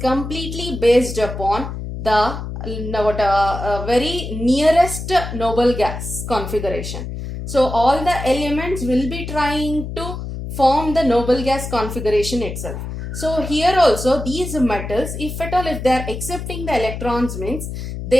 completely based upon the very nearest noble gas configuration. So all the elements will be trying to form the noble gas configuration itself. So here also these metals, if at all, if they are accepting the electrons, means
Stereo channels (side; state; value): left; noise; hum, 7 dB below the sound